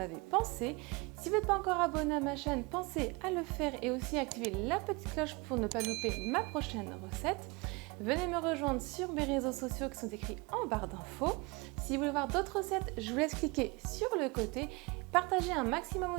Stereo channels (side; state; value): left; quieter; 26.7 dB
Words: pensé. Si vous n'êtes pas encore abonné à ma chaîne, pensez à le faire et aussi activer la petite cloche pour ne pas louper ma prochaine recette. Venez me rejoindre sur mes réseaux sociaux qui sont écrits en barre d'infos. Si vous voulez voir d'autres recettes, je vous laisse cliquer sur le côté. Partagez un maximum